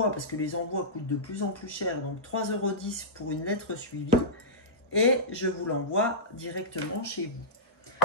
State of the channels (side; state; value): both; normal; correlation -0.15